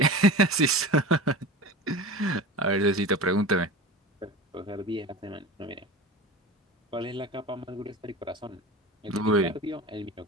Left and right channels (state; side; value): normal; both; correlation 0.31